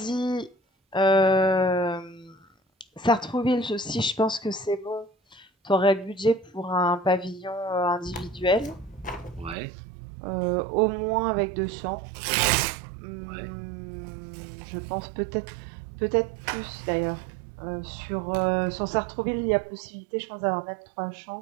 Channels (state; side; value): drops out; left; at 9.6 s